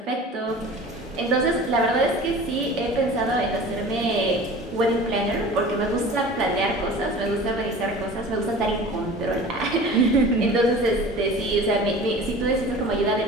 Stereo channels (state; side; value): normal; both; correlation 0.40